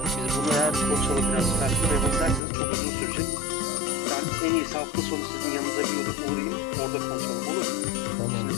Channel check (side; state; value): right; drops out; at 2.4 s